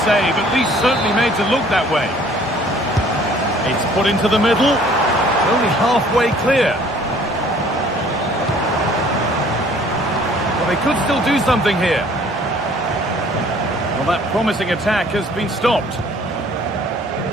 save, at least certainly made to look that way. It's put into the middle. Only halfway clear. Well, they could still do something here. Well, that promising attack has been stopped.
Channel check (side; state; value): both; normal; correlation 0.55